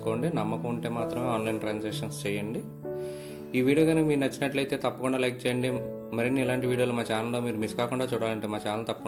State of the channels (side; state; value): both; identical; correlation 1.00